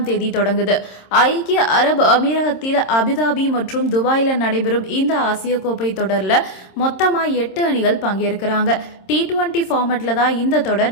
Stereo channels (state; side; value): late; right; 26 ms